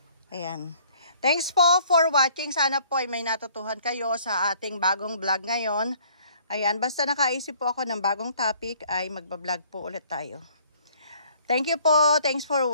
Ayan. Thanks po for watching. Sana po ay may natutuhan kayo sa ating bagong vlog ngayon. Ayan, basta nakaisip po ako ng bagong topic ay magbablog po ulit tayo. Thank you po. Thanks for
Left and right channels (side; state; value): both; inverted; correlation -0.59